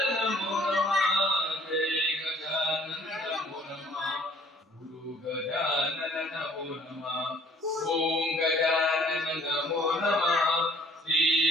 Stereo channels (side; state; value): both; normal; correlation 0.57